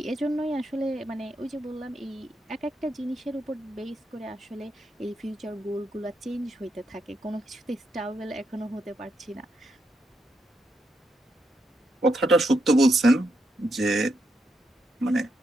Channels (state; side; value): normal; both; correlation 0.81